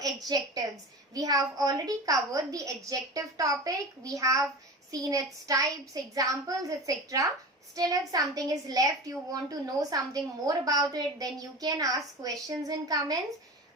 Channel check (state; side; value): normal; both; correlation 0.31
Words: adjectives. We have already covered the adjective topic, we have seen its types, examples, etc. Still, if something is left, you want to know something more about it, then you can ask questions in comments.